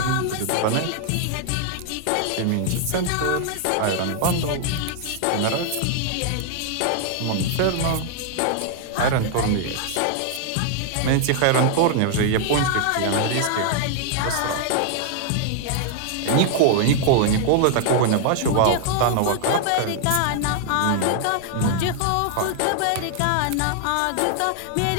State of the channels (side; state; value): both; different; correlation 0.00